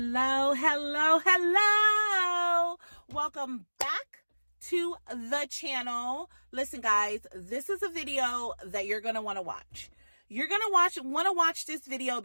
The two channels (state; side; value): inverted; both; correlation -1.00